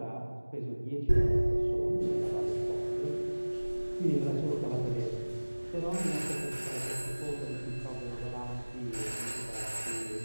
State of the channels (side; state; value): both; inverted; correlation -1.00